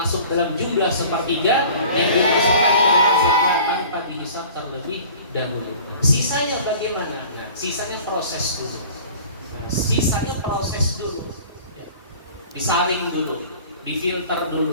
dalam jumlah sepertiga yang dimasukkan ke dalam surga tanpa dihisab terlebih dahulu. Sisanya bagaimana? Nah, sisanya proses dulu. Ya. Disaring dulu, difilter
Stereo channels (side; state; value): both; inverted; correlation -0.46